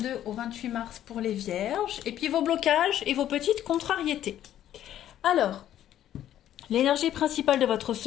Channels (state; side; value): quieter; right; 11.7 dB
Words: au 28 mars pour les Vierges, et puis vos blocages et vos petites contrariétés. Alors, l'énergie principale de votre